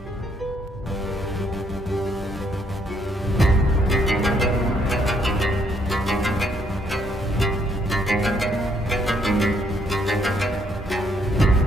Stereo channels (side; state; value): both; normal; correlation 0.70